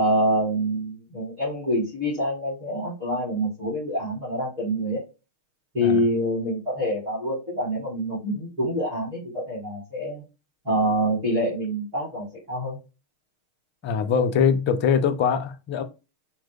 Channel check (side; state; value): left; late; 6.5 ms